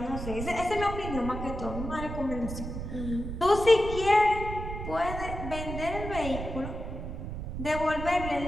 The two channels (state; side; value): noise; right; rumble, 7 dB below the sound